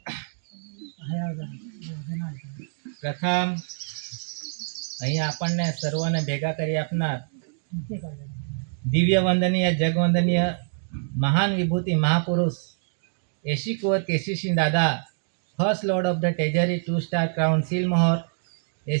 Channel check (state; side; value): silent; left; digital silence